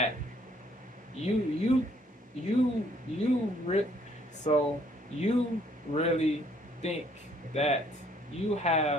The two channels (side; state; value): both; normal; correlation 0.64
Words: you so you really think that you